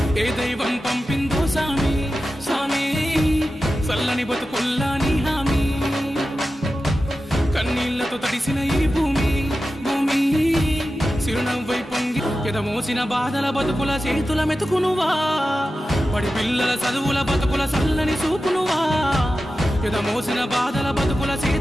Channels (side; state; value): both; normal; correlation 0.93